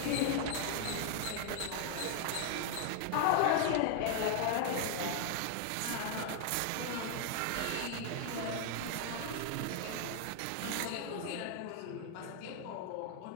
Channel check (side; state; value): both; different; correlation 0.00